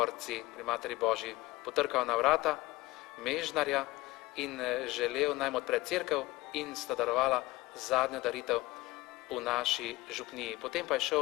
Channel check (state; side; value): quieter; right; 19.9 dB